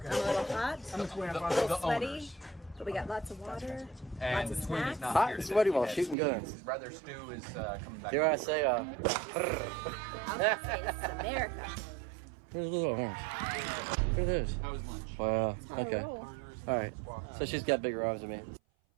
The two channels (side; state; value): left; drops out; at 6.2 s